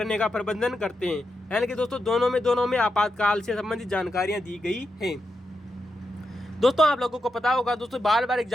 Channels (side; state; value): both; normal; correlation 0.86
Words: का प्रबंधन करते हैं। यानी कि दोस्तों दोनों में आपातकाल से संबंधित जानकारियां दी गई हैं। दोस्तों आप लोगों को पता होगा दोस्तों बार बार